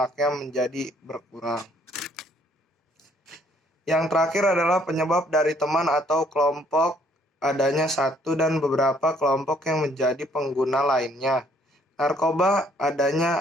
menjadi berkurang. Yang terakhir adalah penyebab dari teman atau kelompok, adanya satu dan beberapa kelompok yang menjadi pengguna lainnya. Narkoba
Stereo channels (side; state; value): both; normal; correlation 0.64